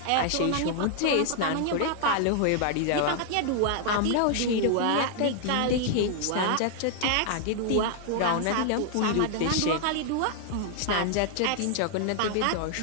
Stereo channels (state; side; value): different; both; correlation 0.00